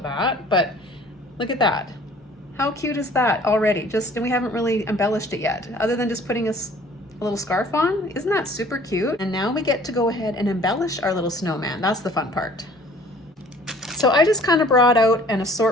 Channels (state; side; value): normal; both; correlation 0.53